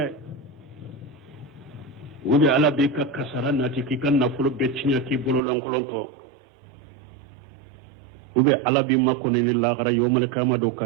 wudi ala be ka kasara na ti kikan na fulo be chinya ki bolo lankolonto ube ala bi makko ni la gara yomal kama do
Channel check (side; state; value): left; drops out; at 5.4 s